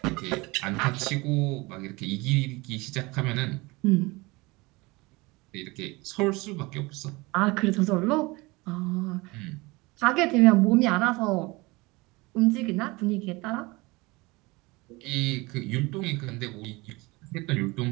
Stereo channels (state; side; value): quieter; left; 23.6 dB